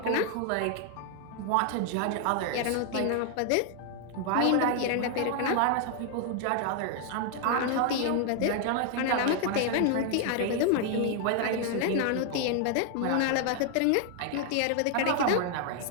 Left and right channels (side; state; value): both; different; correlation 0.00